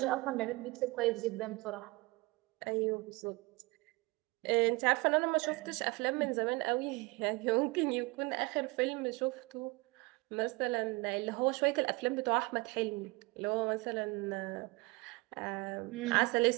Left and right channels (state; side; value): quieter; left; 24.5 dB